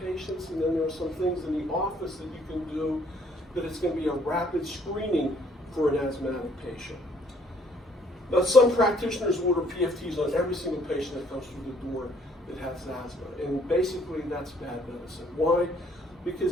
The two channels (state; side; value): normal; both; correlation 0.63